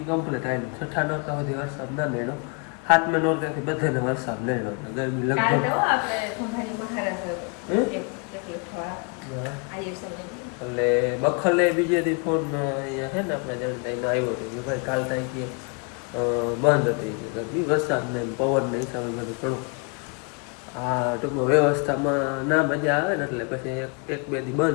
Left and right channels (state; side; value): quieter; right; 34.6 dB